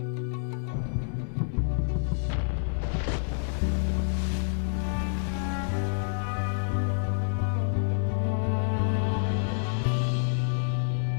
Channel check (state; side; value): silent; right; 57 dB below the other